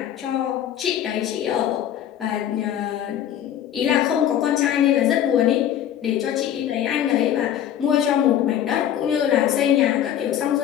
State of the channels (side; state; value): right; quieter; 10.6 dB